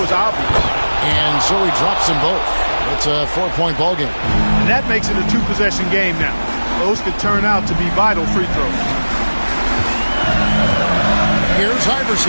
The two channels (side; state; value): both; inverted; correlation -1.00